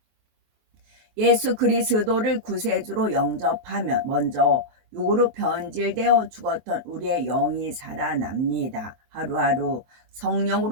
예수 그리스도를 구세주로 영접하면 먼저 육으로 변질되어 죽었던 우리의 영이 살아납니다. 하루하루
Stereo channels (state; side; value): late; left; 23 ms